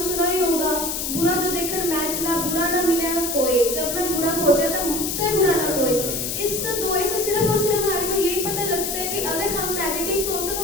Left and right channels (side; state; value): left; noise; hiss, 2 dB below the sound